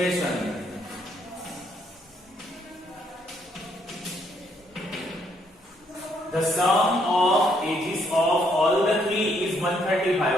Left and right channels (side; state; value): both; normal; correlation 0.71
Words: The sum of ages of all the 3 is